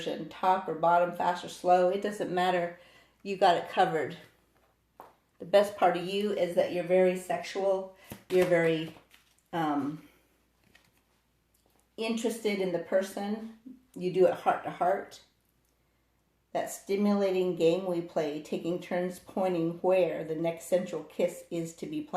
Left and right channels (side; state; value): both; identical; correlation 1.00